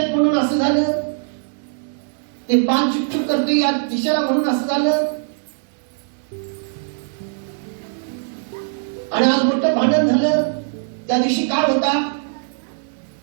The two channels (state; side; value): silent; left; digital silence